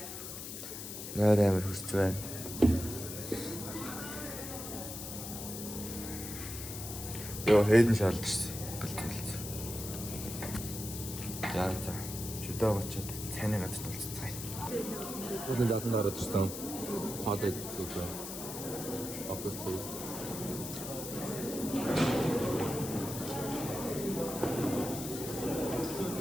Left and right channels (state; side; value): noise; left; hiss, 8 dB below the sound